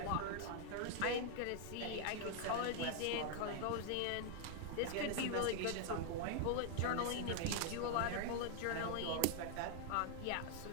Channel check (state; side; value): different; both; correlation 0.00